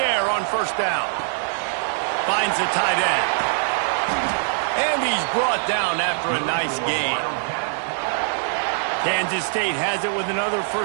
on first down. Finds the tight end. And he's brought down after a nice gain. Kansas State has it with another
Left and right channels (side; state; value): left; silent; 63 dB below the other